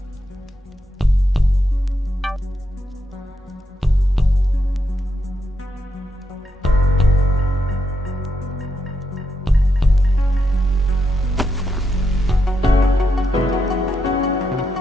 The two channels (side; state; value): both; normal; correlation 0.82